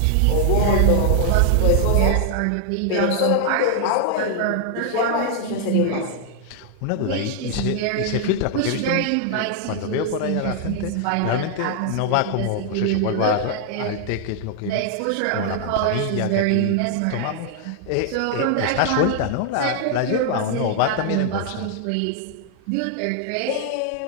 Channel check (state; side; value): different; both; correlation 0.00